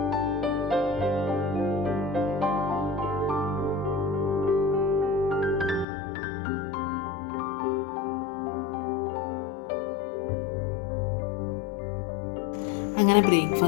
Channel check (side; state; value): right; drops out; at 5.9 s